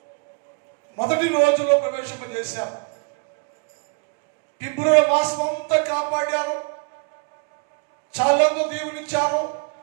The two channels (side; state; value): left; quieter; 33.4 dB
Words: మొదటి రోజులో ప్రవేశింపజేశారు. ఫిబ్రవరి మాసం అంతా కాపాడారు, చాలా దీవునిచ్చారు,